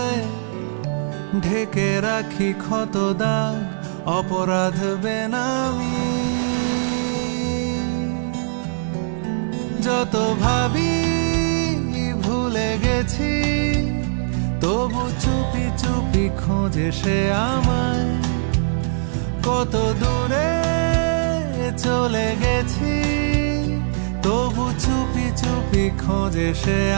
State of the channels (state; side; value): silent; left; 58 dB below the other